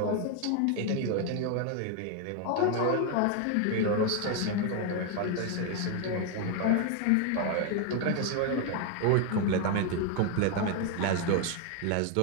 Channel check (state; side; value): different; both; correlation 0.01